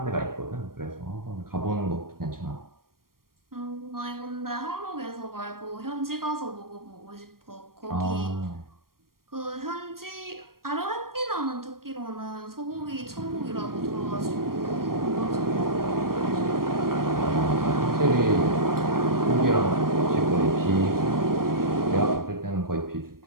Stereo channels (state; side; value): late; left; 0.92 ms